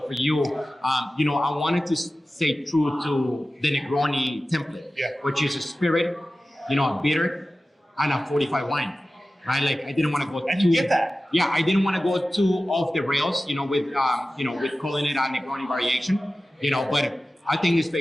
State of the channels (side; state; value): both; normal; correlation 0.95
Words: for you, I wanted to stay true to the Negroni template, which is a spirit, a bitter, and a 45 wine. Right, I didn't want to go. And you get that. Yeah, I didn't want to go too off the rails, with calling it a Negroni variation, But I think it's